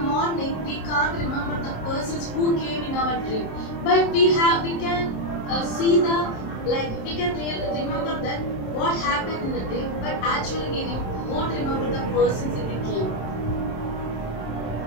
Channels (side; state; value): right; late; 27 ms